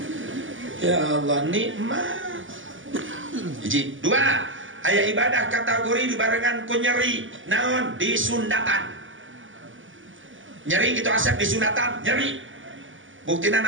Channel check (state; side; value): late; left; 0.57 ms